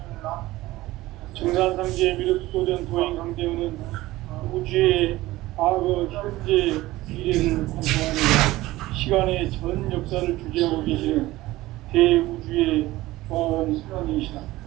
증산상제 미륵도전 도인 강대우는 우주의 과거, 현재, 미래를 관통하는 시간의 전 역사를 주재하고 계시는 대우주의 과원 성인이시다.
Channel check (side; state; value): left; quieter; 17.7 dB